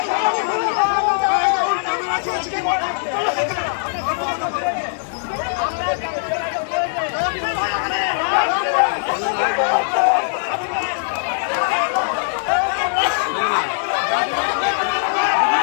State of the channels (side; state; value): right; silent; digital silence